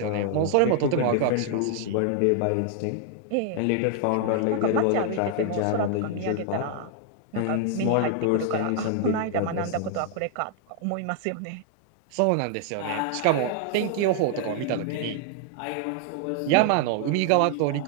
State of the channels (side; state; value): both; different; correlation 0.00